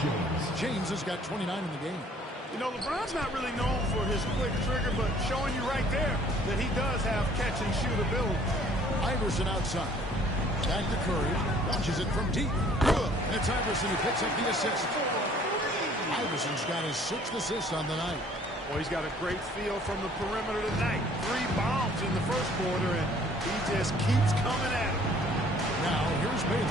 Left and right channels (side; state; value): both; normal; correlation 0.57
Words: James has got 29 in the game. You know, LeBron's not really known for his quick trigger, but showing you right there that he does have catch-and-shoot ability. Iverson outside. Back to Curry. Launches it from deep. Good. And it's Iverson who picks up the assist. Iverson's got his 6th assist on the night. Well, he's got a great feel from the perimeter tonight. 3 bombs in the first quarter, and he just keeps coming at him. Now, here's Bailey.